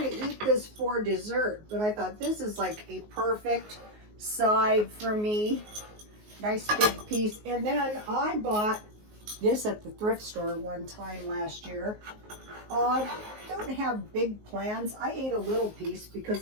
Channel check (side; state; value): left; late; 19 ms